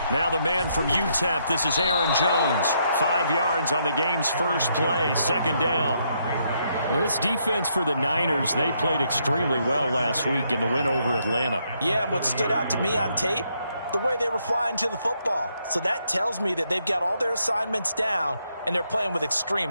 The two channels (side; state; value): both; inverted; correlation -0.75